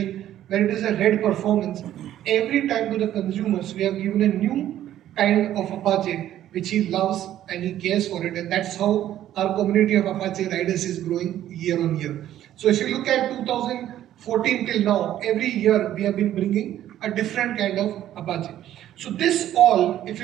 whether it is a red performance, every time to the consumers we have given a new kind of Apache which he loves and he cares for it, and that's how our community of Apache riders is growing year on year. So if you look at 2014 till now, every year we have been bringing a different kind of Apache. So this all, if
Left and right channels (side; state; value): left; quieter; 12.2 dB